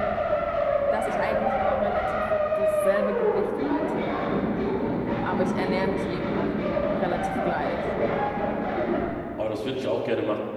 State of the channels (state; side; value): identical; both; correlation 1.00